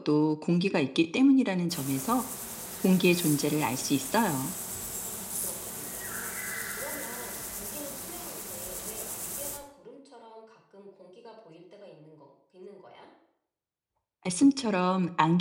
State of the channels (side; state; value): both; identical; correlation 1.00